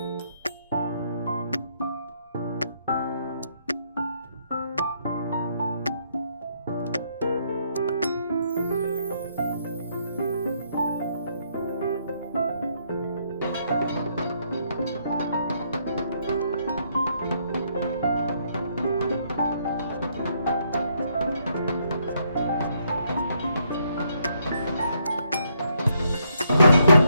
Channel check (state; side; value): inverted; both; correlation -0.73